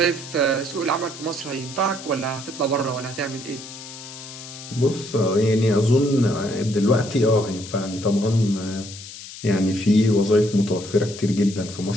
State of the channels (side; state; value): left; noise; hiss, 14 dB below the sound